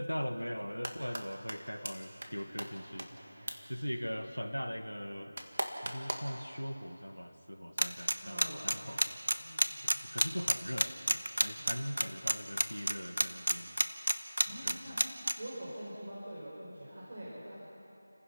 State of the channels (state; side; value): inverted; both; correlation -0.99